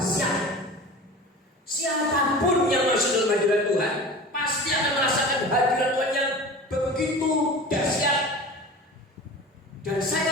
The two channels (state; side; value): normal; both; correlation 0.36